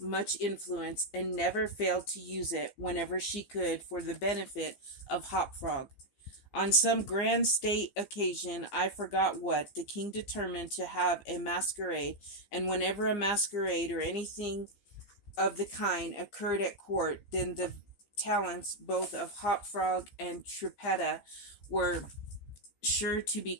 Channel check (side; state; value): right; late; 15 ms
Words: influence and never failed to use it whenever she could for the benefit of Hopfrog. On some grand state occasion, I forgot what, the king determined to have a masquerade, and whenever a masquerade or anything of the kind occurred at court, then the talents both of Hopfrog and Trippetta were sure to be